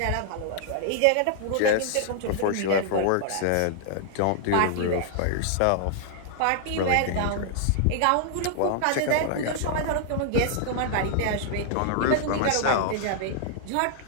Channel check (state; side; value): different; both; correlation -0.01